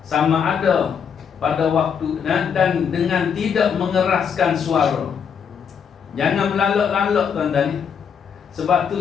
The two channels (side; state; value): right; quieter; 7.1 dB